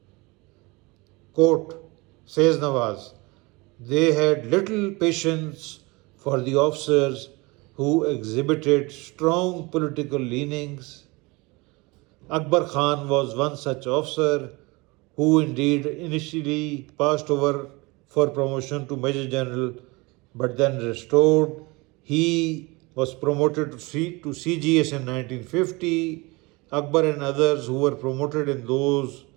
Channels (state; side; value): quieter; left; 25.0 dB